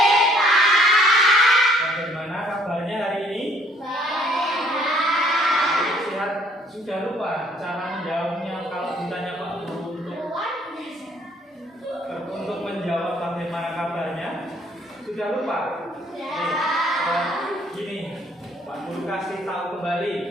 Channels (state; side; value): normal; both; correlation 0.62